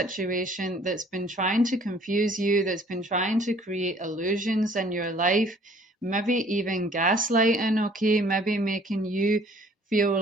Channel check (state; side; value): normal; both; correlation 0.56